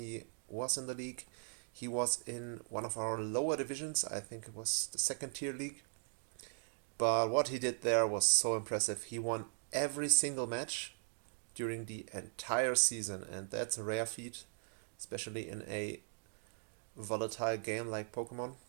was in the league, he was in one of our lower divisions. I think it was the second tier league. But what he did there was so impressive. He won every single match during the entire season, and that's a rare feat, especially in a volatile game like Pokemon.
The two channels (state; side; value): silent; left; digital silence